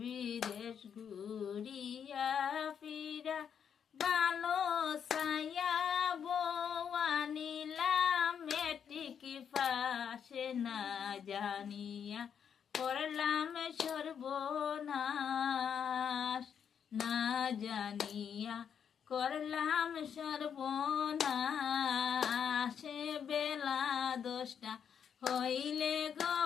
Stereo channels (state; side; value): quieter; right; 7.8 dB